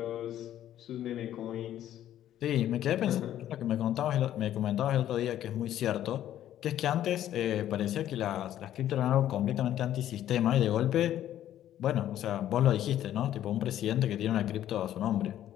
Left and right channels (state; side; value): quieter; right; 11.9 dB